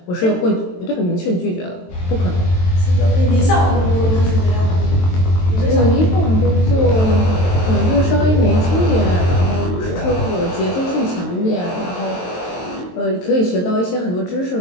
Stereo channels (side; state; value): right; late; 23 ms